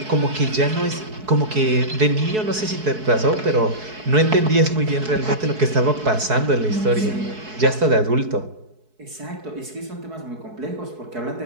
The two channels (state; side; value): late; left; 4.7 ms